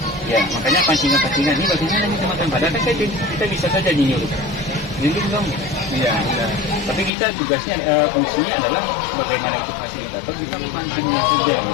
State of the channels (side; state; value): right; drops out; at 7.1 s